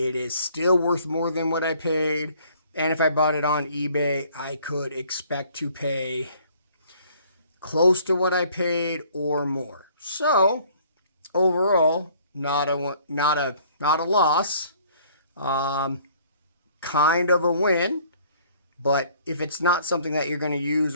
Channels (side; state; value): both; inverted; correlation -0.58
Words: is still worth more than what I paid. And if I bought it on eBay, I could expect to pay close to what I paid or more. So overall, not a loss. Kind of a win, but if it's not something that you're going to use